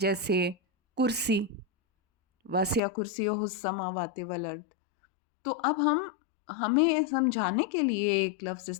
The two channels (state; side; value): drops out; right; at 2.8 s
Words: کرسی، واسع کرسیہ السماوات والارض. تو اب ہمیں سمجھانے کے لیے ایک لفظ